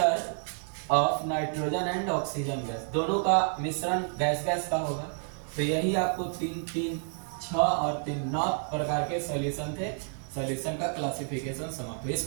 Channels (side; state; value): left; silent; 56 dB below the other